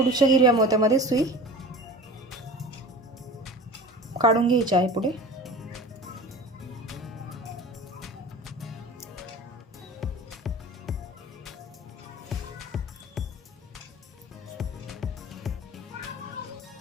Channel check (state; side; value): normal; both; correlation 0.37